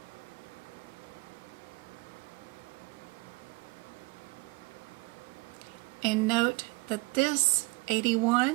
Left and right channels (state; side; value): quieter; left; 24.4 dB